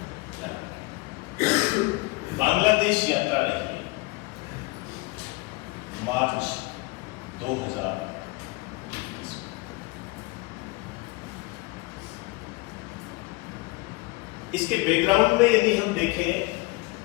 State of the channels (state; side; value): quieter; right; 24.0 dB